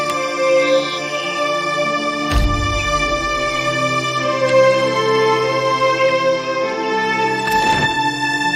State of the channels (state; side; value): identical; both; correlation 1.00